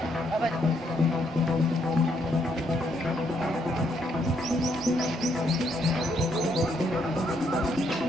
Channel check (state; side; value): normal; both; correlation 0.73